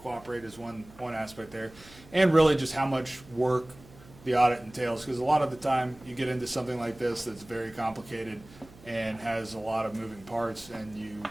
is one aspect there, and really just how much work the audit entails, because a lot of the time you get into something like this that's very complicated and has a lot of moving parts, and you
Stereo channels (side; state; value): right; noise; hum, 22 dB below the sound